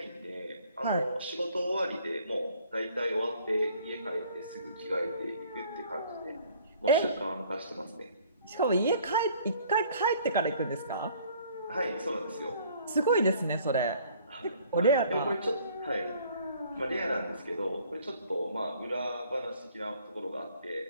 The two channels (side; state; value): both; inverted; correlation -0.57